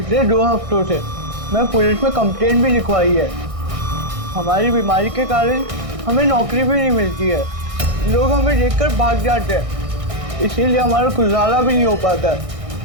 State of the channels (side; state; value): left; late; 1.6 ms